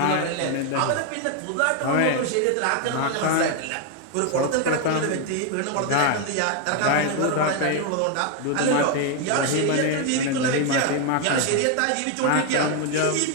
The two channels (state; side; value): different; both; correlation 0.01